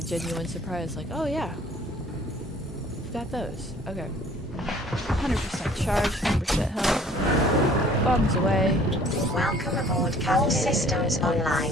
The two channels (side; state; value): both; normal; correlation 0.53